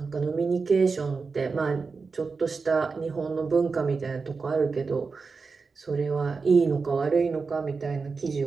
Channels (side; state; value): left; quieter; 4.6 dB